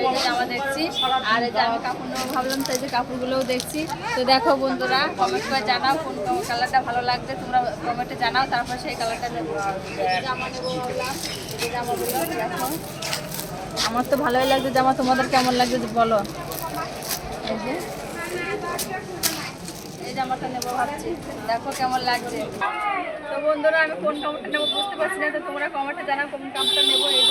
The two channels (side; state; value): both; identical; correlation 1.00